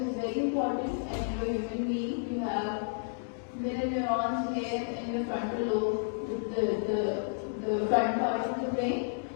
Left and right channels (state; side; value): silent; right; digital silence